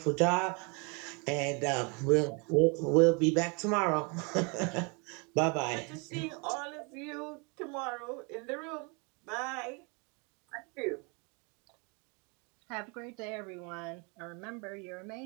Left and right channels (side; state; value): left; quieter; 32.4 dB